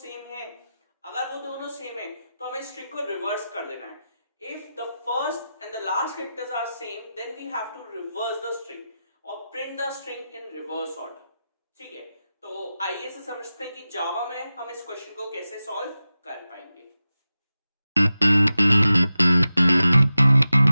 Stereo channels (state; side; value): inverted; both; correlation -0.93